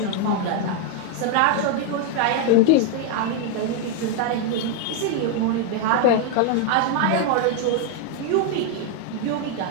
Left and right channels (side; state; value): both; different; correlation 0.00